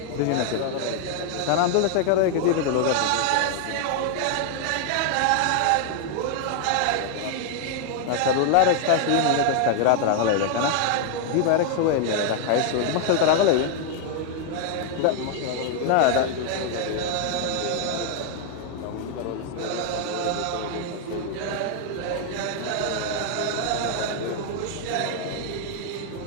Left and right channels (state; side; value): different; both; correlation 0.00